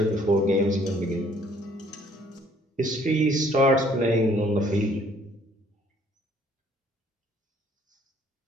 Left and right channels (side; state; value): both; normal; correlation 0.60